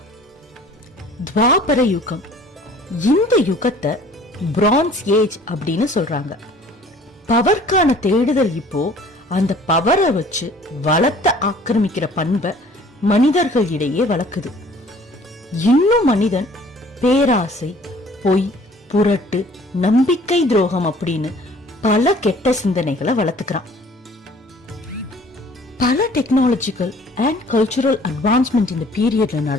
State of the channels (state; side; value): normal; both; correlation 0.53